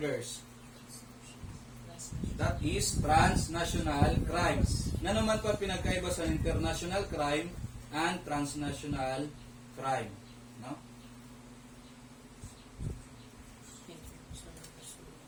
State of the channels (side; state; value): both; identical; correlation 1.00